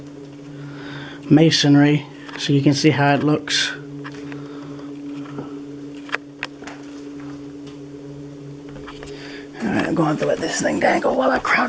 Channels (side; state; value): both; identical; correlation 1.00